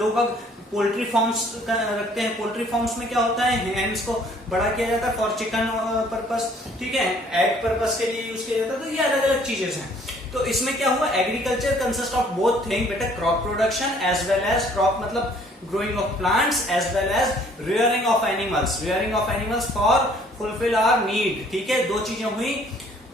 पोल्ट्री फार्म्स रखते हैं। पोल्ट्री फार्म्स में क्या होता है? हैंड्स को बड़ा किया जाता है फॉर चिकन पर्पस। ठीक है, एग पर्पस के लिए यूज किया जाता है। तो ये अलग अलग चीजें हैं। तो इसमें क्या हुआ? Agriculture consist of both thing बेटा, crop production as well as crop मतलब growing of plants as well as rearing of animals for fulfill our need। ठीक है, दो चीजें हुई।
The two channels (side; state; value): both; normal; correlation 0.59